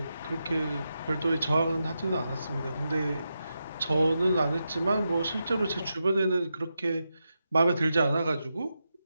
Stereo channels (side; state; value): both; inverted; correlation -0.88